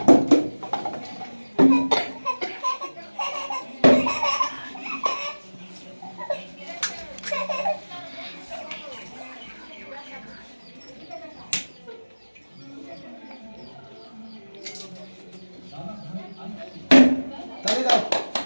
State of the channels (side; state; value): both; inverted; correlation -1.00